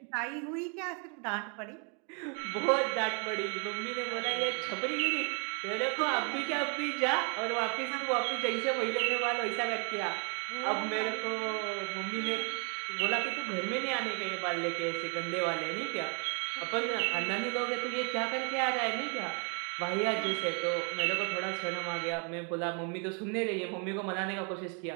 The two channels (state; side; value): quieter; left; 37.7 dB